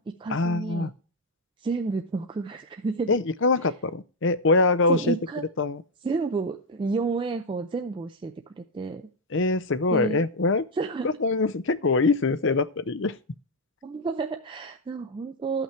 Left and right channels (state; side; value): normal; both; correlation 0.01